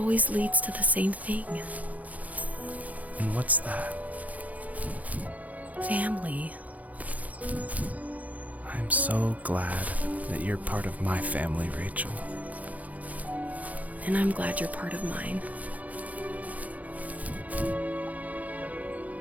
leads to the same thing. And what's that? Family. I'm so glad that you're part of my family, Rachel. And I'm glad you're part of mine.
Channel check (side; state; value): left; late; 0.074 ms